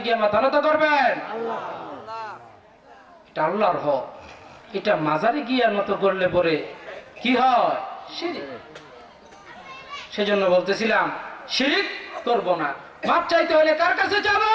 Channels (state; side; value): identical; both; correlation 1.00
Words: গিয়ে মাথা নত করবেন? এটা আল্লাহর হক। এটা মাজারে গিয়ে নত করলে পরে কি হয়? শিরিক। সেজন্য বলতেছিলাম শিরিক করব না। মাপ চাইতে হলে কার কাছে যাব?